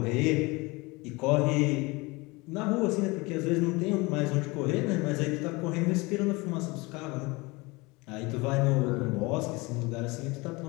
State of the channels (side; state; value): right; quieter; 24.6 dB